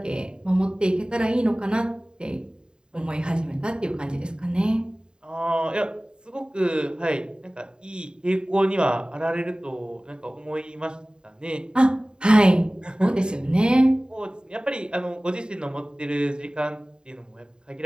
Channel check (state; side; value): late; left; 0.049 ms